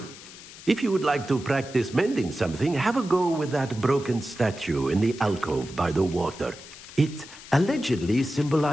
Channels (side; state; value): left; noise; hiss, 17 dB below the sound